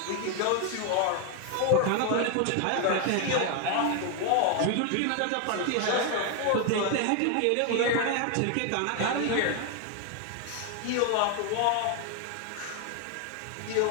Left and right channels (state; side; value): different; both; correlation 0.01